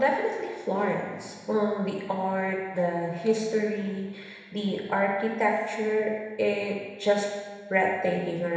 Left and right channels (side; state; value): both; identical; correlation 1.00